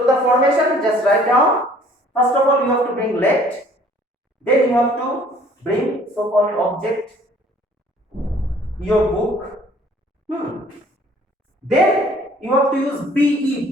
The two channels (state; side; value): normal; both; correlation 0.56